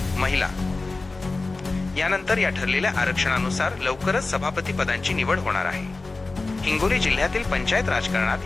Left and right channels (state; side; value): quieter; right; 3.5 dB